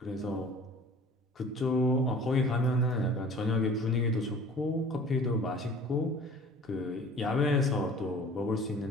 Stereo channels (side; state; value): both; normal; correlation 0.46